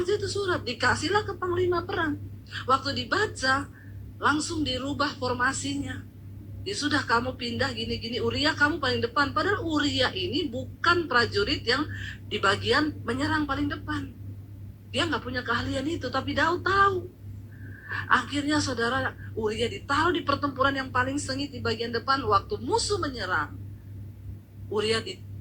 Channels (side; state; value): both; identical; correlation 1.00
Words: itu surat, dikasihlah ke panglima perang. Waktu dibaca, langsung dirubah formasinya. Ya sudah, kamu pindah gini-gini, Uria kamu paling depan. Padahal Uria ini bukan prajurit yang di bagian menyerang paling depan. Dia nggak punya keahlian itu, tapi Daud tahu. Akhirnya saudara, Uria ditaruh di pertempuran yang paling sengit di bagian depan. Waktu musuh menyerang, Uria